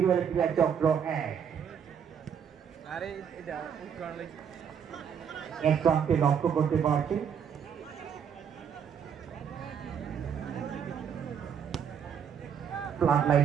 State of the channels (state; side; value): quieter; left; 7.8 dB